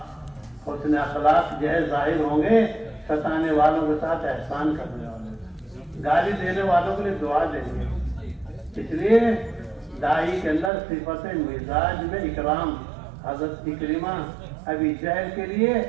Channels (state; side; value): drops out; left; at 10.7 s